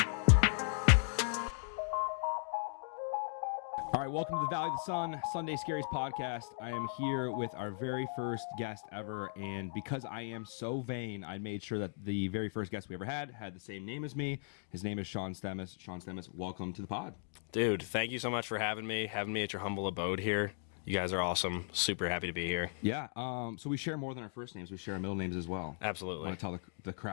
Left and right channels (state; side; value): silent; right; digital silence